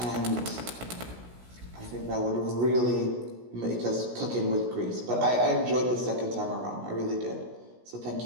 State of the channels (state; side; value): late; left; 16 ms